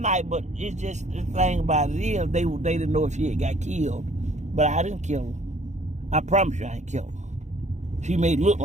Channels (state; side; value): late; left; 0.34 ms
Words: but it's just the thing about it is they didn't know if she had got killed. But I didn't kill her. I promise you I ain't killed her. She may look